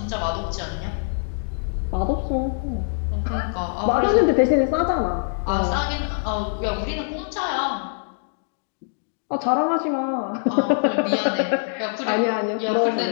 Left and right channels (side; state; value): right; silent; digital silence